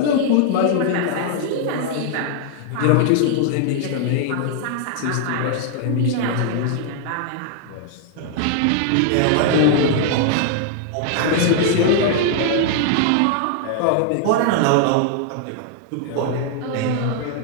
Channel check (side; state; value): both; different; correlation 0.00